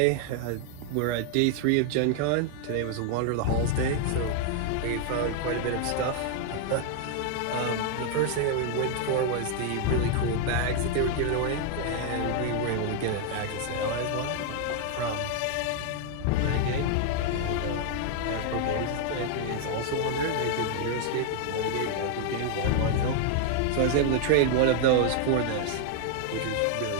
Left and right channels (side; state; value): both; different; correlation 0.00